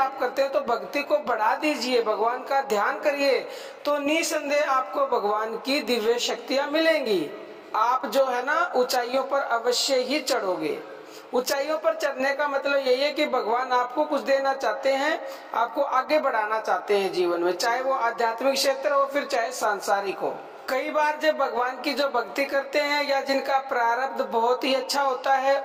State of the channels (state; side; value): identical; both; correlation 1.00